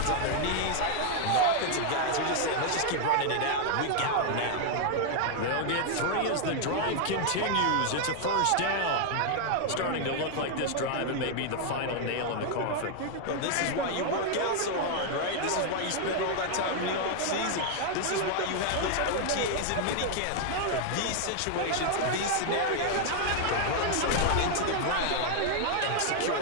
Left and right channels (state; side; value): different; both; correlation 0.00